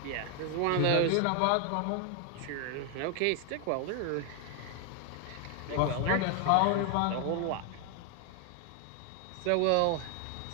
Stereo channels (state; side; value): different; both; correlation 0.00